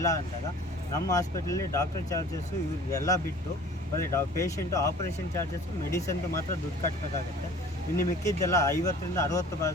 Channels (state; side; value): normal; both; correlation 0.47